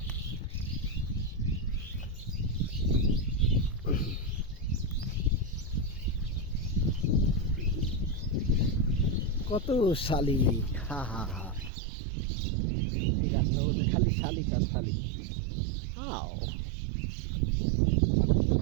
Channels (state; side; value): drops out; left; at 11.7 s